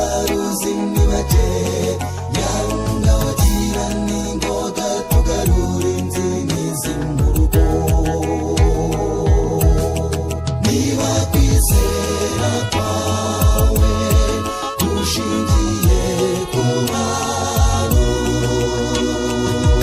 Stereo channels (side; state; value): both; identical; correlation 1.00